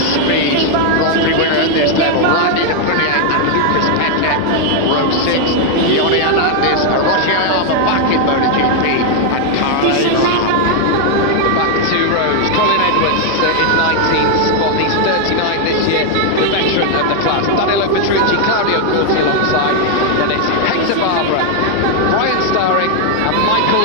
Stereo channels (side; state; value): both; different; correlation 0.00